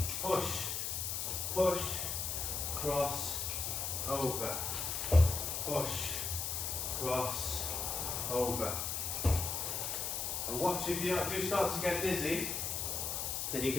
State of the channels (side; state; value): left; noise; hiss, 1 dB below the sound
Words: push, push, cross, over, push, cross, over. And watch, if you do start to get dizzy, then you